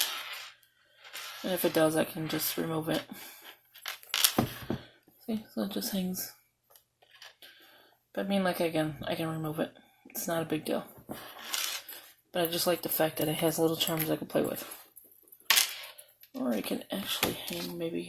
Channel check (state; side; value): identical; both; correlation 1.00